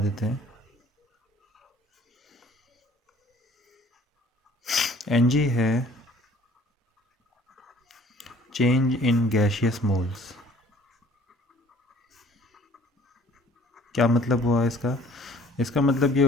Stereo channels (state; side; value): normal; both; correlation 0.54